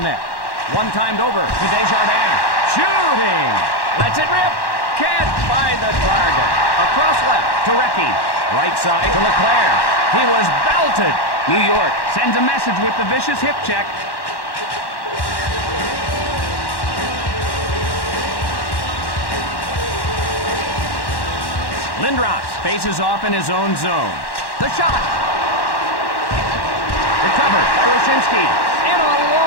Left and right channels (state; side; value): late; right; 1.1 ms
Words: One timed over to Desjardins. Shooting. Lets it rip. Can't find the target. Across left to Recchi. Right side to Leclerc. He was belted. New York sends a message with the vicious hip check. Lindros faces off in his own zone. The shot. Recovered by Wyszynski. In